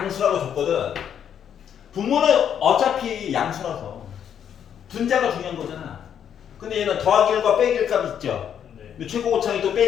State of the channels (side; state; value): right; quieter; 8.8 dB